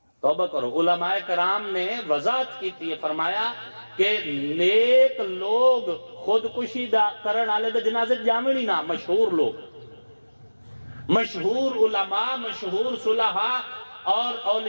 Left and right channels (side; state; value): both; inverted; correlation -1.00